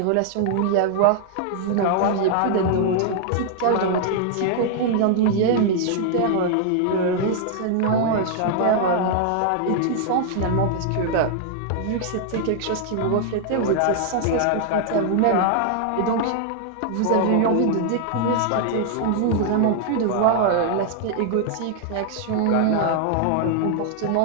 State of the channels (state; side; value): different; both; correlation 0.00